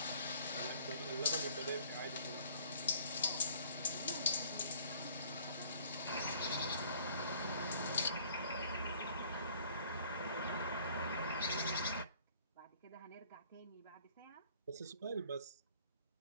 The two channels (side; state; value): both; inverted; correlation -0.56